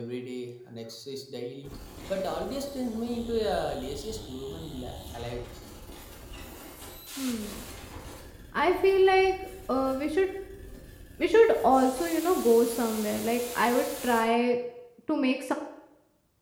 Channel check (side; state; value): both; identical; correlation 1.00